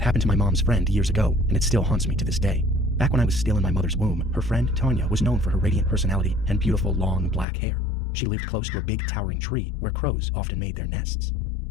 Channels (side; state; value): right; drops out; at 7.5 s